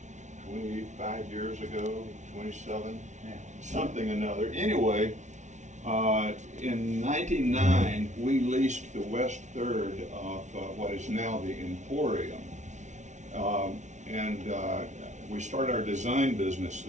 25 years ago, 27, something another. Anyway, in 99, we leased the west third of what is now the Emporium. We started our design business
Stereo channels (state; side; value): late; left; 0.35 ms